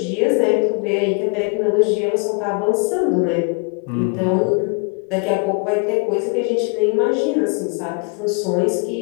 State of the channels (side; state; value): right; quieter; 34.3 dB